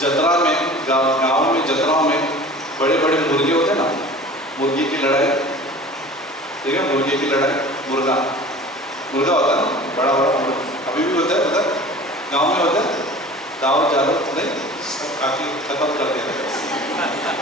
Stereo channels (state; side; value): normal; both; correlation 0.41